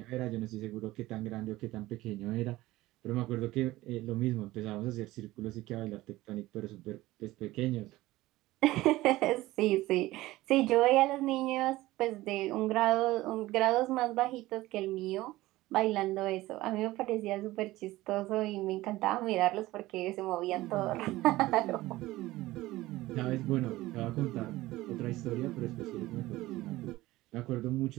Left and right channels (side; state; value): left; quieter; 17.8 dB